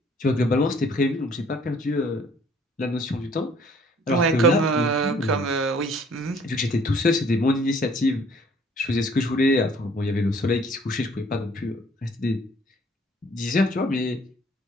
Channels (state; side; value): normal; both; correlation 0.58